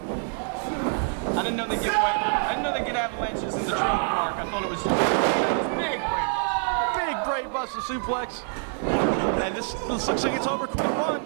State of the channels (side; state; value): left; silent; 56 dB below the other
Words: I didn't know they get avalanches in the trailer park. I thought it was Big brain buster suplex. And this looks like it's over quick. 1,